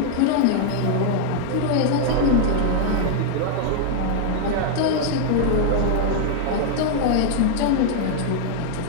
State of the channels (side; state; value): both; different; correlation 0.00